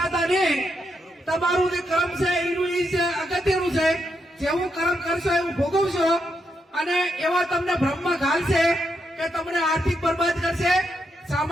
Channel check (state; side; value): normal; both; correlation 0.82